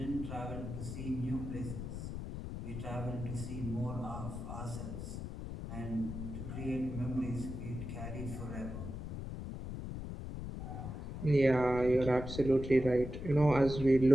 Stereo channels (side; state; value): left; noise; rumble, 6 dB below the sound